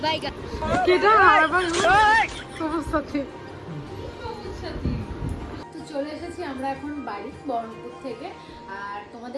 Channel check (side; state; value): both; identical; correlation 1.00